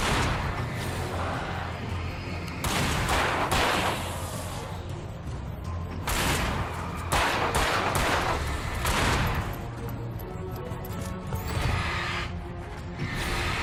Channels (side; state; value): both; identical; correlation 1.00